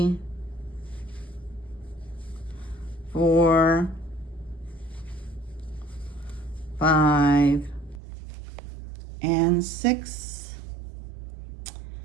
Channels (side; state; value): left; drops out; at 8.0 s